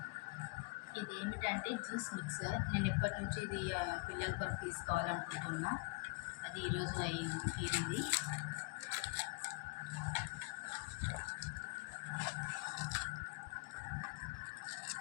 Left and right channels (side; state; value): right; quieter; 27.4 dB